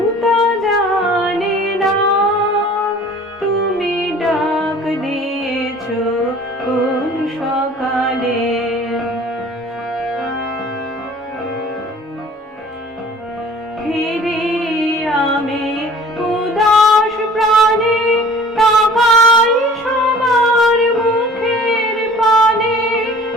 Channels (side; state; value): both; normal; correlation 0.48